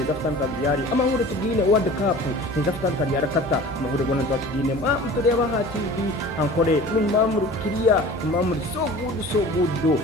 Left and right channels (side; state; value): both; normal; correlation 0.41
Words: fatan kariyari amahure tugine World Cup neza fatan kariyari kata amahure gona tugine mutureva ha TV Ankole numamuru kiriya numamuru so good